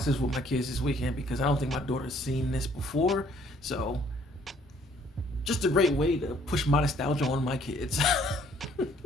this with my kids this weekend because I don't think my daughter's seen this before. So just a great way to push my nostalgia on my kids.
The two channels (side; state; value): both; normal; correlation 0.62